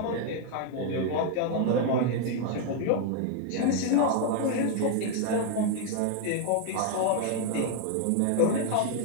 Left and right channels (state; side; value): different; both; correlation 0.00